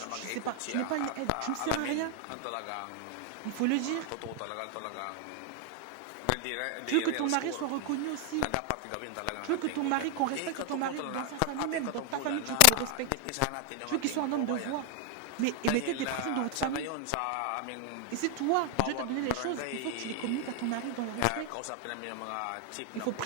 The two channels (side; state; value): both; different; correlation 0.00